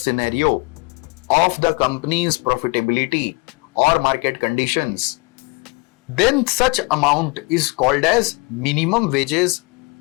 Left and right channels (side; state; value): right; quieter; 28.2 dB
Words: of the companies profitability और market conditions, then such amount is called as minimum wages